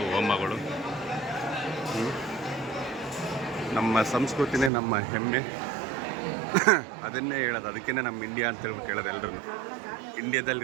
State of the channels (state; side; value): drops out; left; at 4.7 s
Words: ಹೋಮಗಳು. ನಮ್ಮ ಸಂಸ್ಕೃತಿನೇ ನಮ್ಮ ಹೆಮ್ಮೆ. ಅದನ್ನೇ ಹೇಳೋದು, ಅದಕ್ಕೇ ನಮ್ಮ ಇಂಡಿಯಾ ಅಂತ ಹೇಳ್ಬಿಟ್ಟು ಹೇಳೋದು ಎಲ್ಲರೂ.